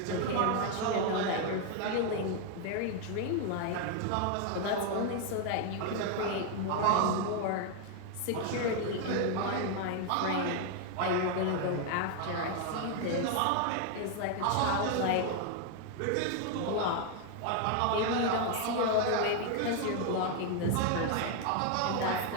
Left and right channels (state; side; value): different; both; correlation 0.00